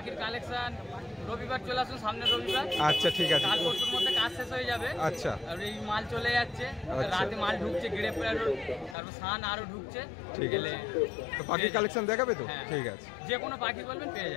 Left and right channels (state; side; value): drops out; right; at 9.0 s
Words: কালেকশন রবিবার চলে আসুন, সামনের রবিবার। আচ্ছা, ঠিক আছে। কাল পরশুর মধ্যে কাজ শেষ হয়ে যাবে। আচ্ছা। আর এই মাল চলে যাচ্ছে, রাতে মাল ঢুকছে, গ্রে প্যারট, তারপর সান আরো ঢুকছে। ঠিক আছে। তো পাখির কালেকশন দেখাবে তো? ঠিক আছে। যে কোনো পাখি বলবেন পেয়ে